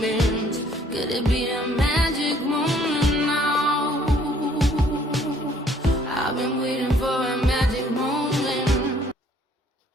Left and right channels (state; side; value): normal; both; correlation 0.61